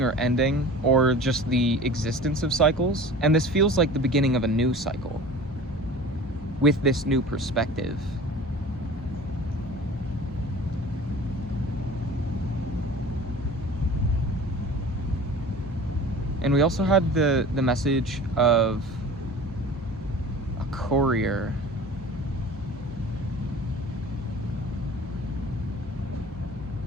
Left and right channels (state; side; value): normal; both; correlation 0.41